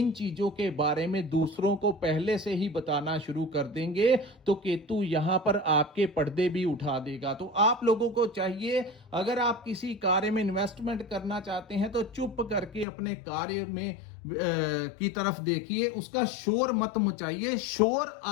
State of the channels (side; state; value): right; drops out; at 12.9 s